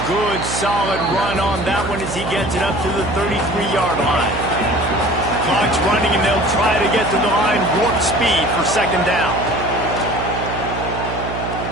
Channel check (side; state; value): right; noise; hum, 7 dB below the sound